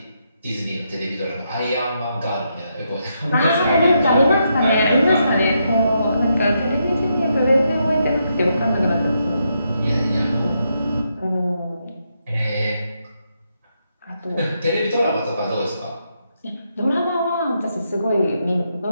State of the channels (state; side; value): inverted; both; correlation -0.80